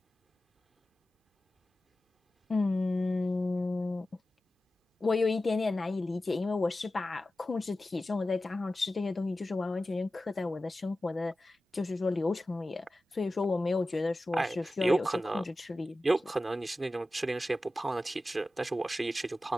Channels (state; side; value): normal; both; correlation 0.94